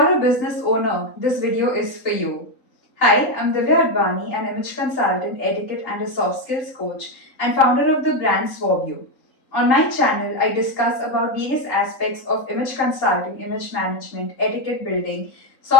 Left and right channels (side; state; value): right; late; 3.9 ms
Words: a business owner, this video is for you. Hi, I'm Divyaa Advaani, an image consultant, etiquette, and a soft skills coach, and founder of the brand Suave U. On my channel, I discuss about various aspects of image consulting, image management, etiquette building,